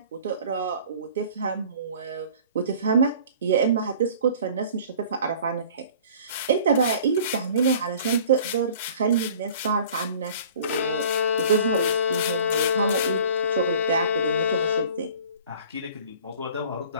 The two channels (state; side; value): inverted; both; correlation -0.47